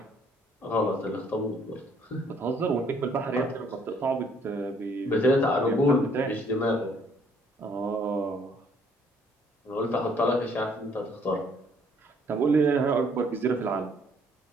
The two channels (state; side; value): normal; both; correlation 0.64